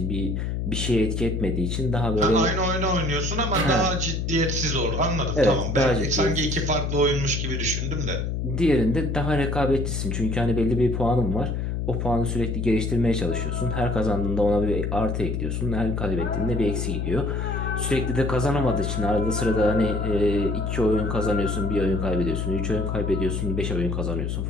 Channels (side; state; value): left; noise; hum, 1 dB below the sound